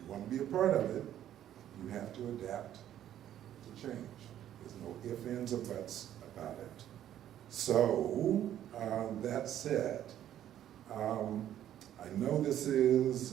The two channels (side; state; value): left; quieter; 11.4 dB